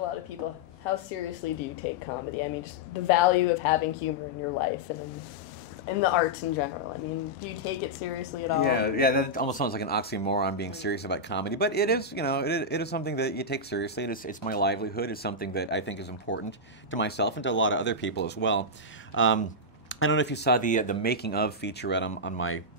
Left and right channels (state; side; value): normal; both; correlation -0.07